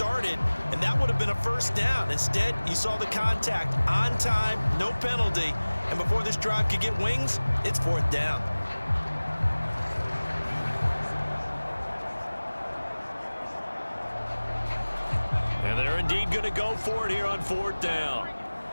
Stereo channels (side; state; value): both; inverted; correlation -1.00